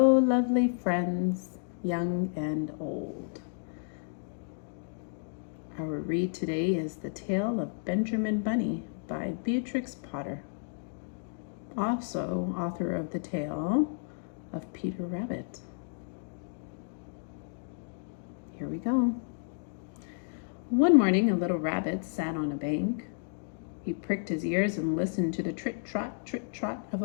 lovely friends, young and old. Our read today is The Tale of Benjamin Bunny by Beatrix Potter, also author of the tale of Peter Rabbit. Here we go. One morning, a little rabbit sat on a bank. He pricked his ears and listened to the trit-trot of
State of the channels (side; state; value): right; silent; digital silence